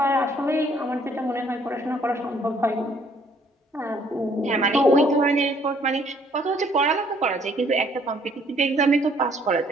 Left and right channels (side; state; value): both; normal; correlation 0.63